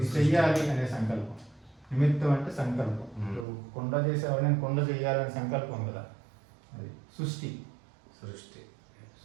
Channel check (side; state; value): left; drops out; at 3.5 s